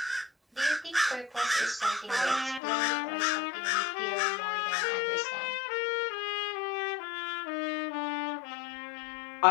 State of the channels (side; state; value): right; drops out; at 2.6 s